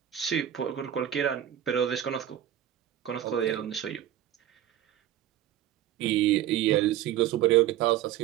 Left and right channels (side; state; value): left; quieter; 11.8 dB